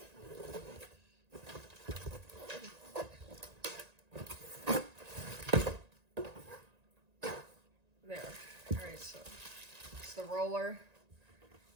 There. Alright, so it's the roller.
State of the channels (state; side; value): late; left; 1.9 ms